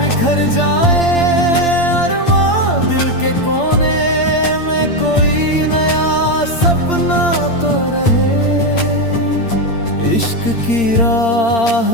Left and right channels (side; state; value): right; late; 8.7 ms